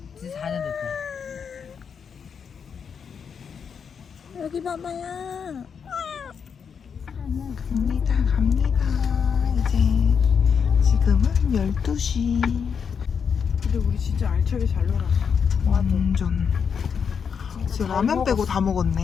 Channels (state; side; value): quieter; right; 6.7 dB